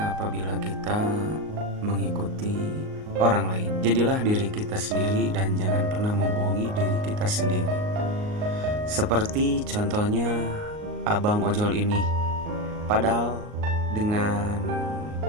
apabila kita mengikuti orang lain. Jadilah diri kita sendiri dan jangan pernah membohongi diri kita sendiri. Seperti contohnya abang ojol ini. Padahal dengan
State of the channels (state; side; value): late; left; 38 ms